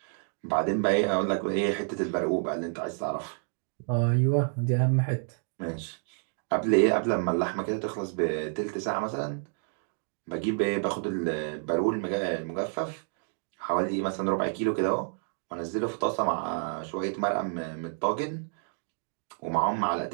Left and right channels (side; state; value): left; silent; 58 dB below the other